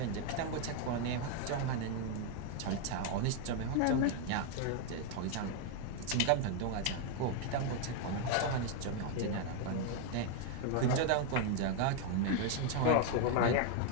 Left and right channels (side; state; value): both; different; correlation 0.00